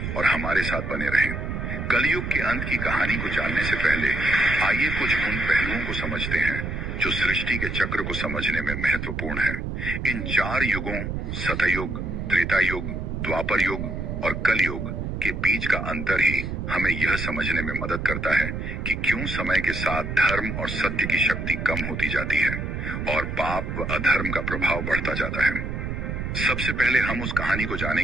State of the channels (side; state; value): right; noise; rumble, 4 dB below the sound